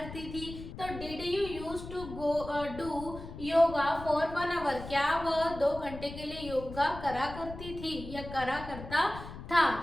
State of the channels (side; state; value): left; noise; rumble, 12 dB below the sound